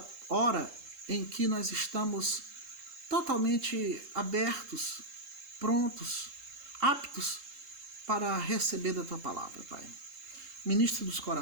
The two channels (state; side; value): late; left; 3.7 ms